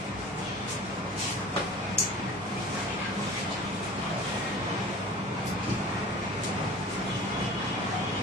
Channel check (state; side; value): normal; both; correlation 0.41